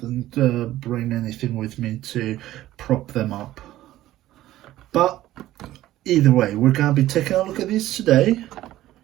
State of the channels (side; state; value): left; quieter; 14.7 dB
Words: bring anything with me to prop them up. But either way, we're gonna be taking a look at these today.